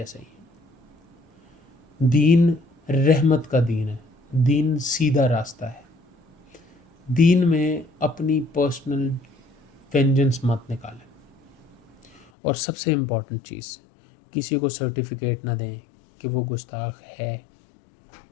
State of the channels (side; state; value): right; drops out; at 12.2 s